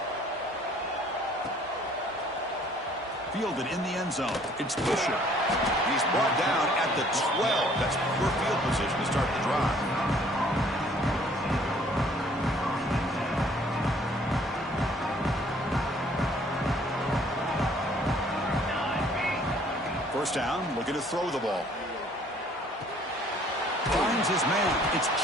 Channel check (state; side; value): normal; both; correlation 0.58